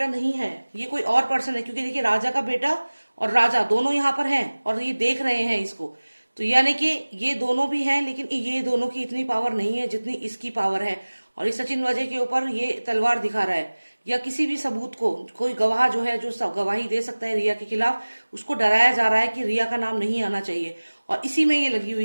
नहीं है, ये कोई और पर्सन है। क्योंकि देखिए राजा का बेटा और राजा दोनों यहाँ पर हैं और ये देख रहे हैं इसको। तो यानी कि ये दोनों भी हैं, लेकिन ये दोनों की इतनी पावर नहीं है जितनी इसकी पावर है। और इस सचिन वाजे के ऊपर ये तलवार दिखा रहा है, या किसी भी सबूत को, कोई गवाह जो है, जो गवाही दे सकता है रिया के खिलाफ, उसको डराया जा रहा है कि रिया का नाम नहीं आना चाहिए। और इसी में ये लगी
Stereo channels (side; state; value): both; inverted; correlation -1.00